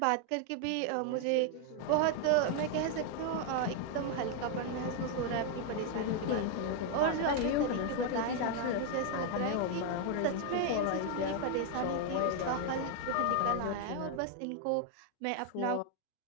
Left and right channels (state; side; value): different; both; correlation 0.00